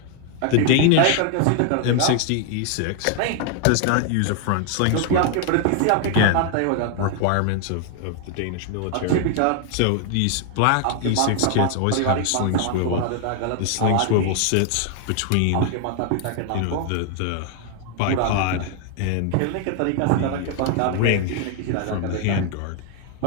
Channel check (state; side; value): different; both; correlation 0.00